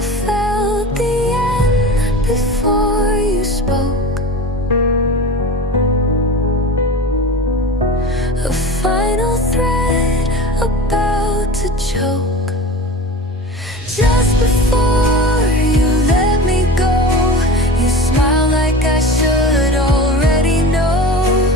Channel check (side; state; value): both; normal; correlation 0.33